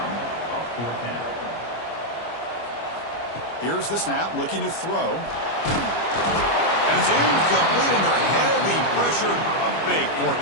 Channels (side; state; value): right; late; 25 ms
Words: fourth down. Here's the snap, looking to throw. And it's incomplete under heavy pressure. A big fourth